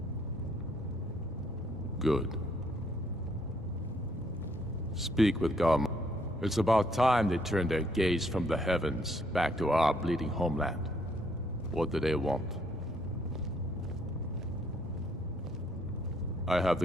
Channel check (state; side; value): normal; both; correlation 0.68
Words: Good. Speak with Galmar. It's about time they turned their gaze from the heavens back to our bleeding homeland. What do they want? I have